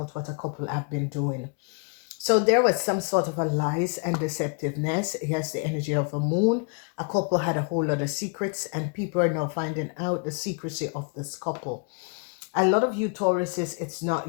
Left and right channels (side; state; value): right; quieter; 38.2 dB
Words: what a couple have been doing. So there was some sort of a lies and deceptiveness. It has the energy of a moon. A couple had a whole lot of secrets, and people are now finding out the secrecy of this couple. A lot of you Tauruses, it's